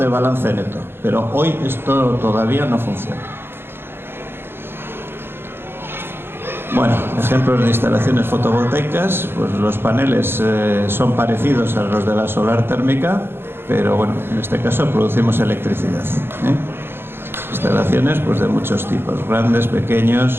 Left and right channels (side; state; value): left; late; 0.11 ms